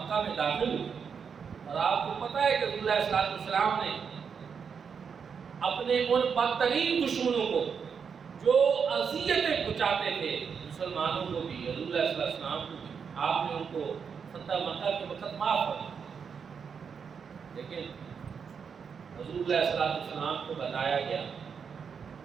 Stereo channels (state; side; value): quieter; left; 6.4 dB